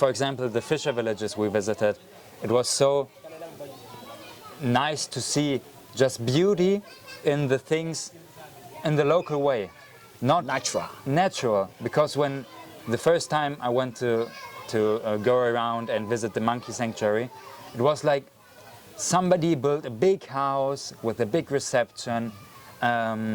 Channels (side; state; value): both; identical; correlation 1.00